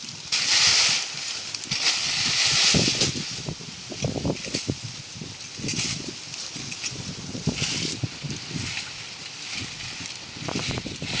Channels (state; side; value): identical; both; correlation 1.00